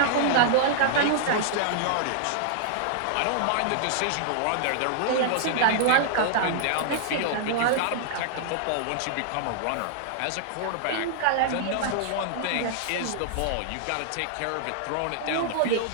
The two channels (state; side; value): different; both; correlation -0.01